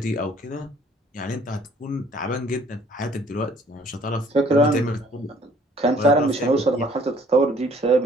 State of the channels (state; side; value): normal; both; correlation 0.58